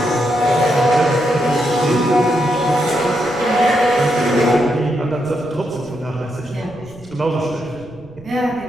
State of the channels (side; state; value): right; noise; rumble, 23 dB below the sound